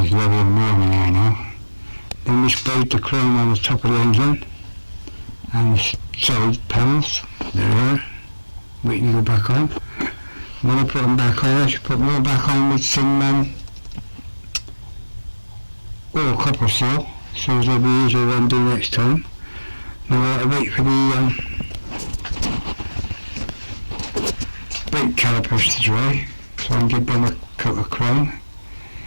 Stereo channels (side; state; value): both; inverted; correlation -1.00